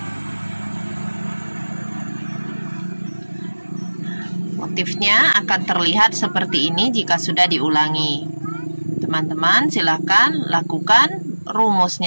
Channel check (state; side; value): inverted; both; correlation -1.00